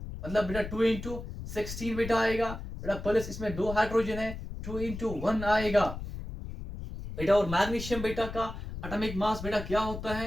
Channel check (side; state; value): left; noise; rumble, 9 dB below the sound